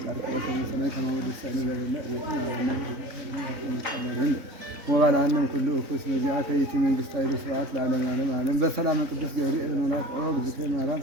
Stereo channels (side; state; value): left; late; 3.6 ms